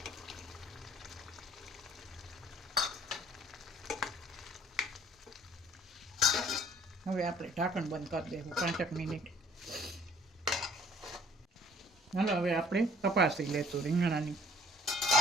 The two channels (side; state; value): both; normal; correlation 0.56